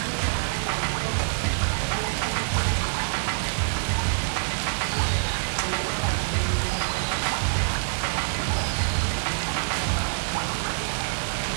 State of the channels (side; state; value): left; silent; digital silence